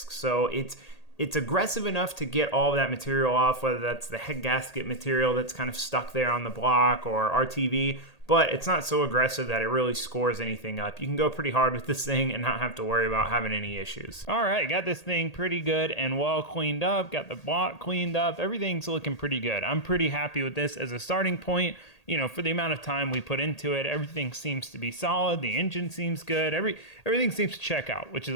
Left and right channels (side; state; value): right; late; 1.8 ms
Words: So it's aggressive enough to get all of that material off, whether that's the head gasket material that's kind of stuck there on the block or RTV, but it's not so aggressive that it really scores anything up. You can go pretty hard with this thing and not have to worry about having any issues. All right, got this thing pretty good and well cleaned up, got the block cleaned up, everything's looking pretty good. I'm pretty happy with this as a starting point. You know, for the amount of time we put into it, everything seems to be solid. The engine seems good. Everything seems to check out, which